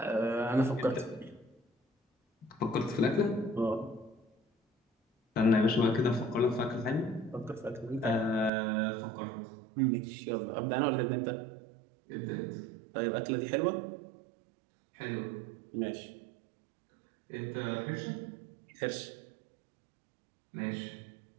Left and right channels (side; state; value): left; drops out; at 8.5 s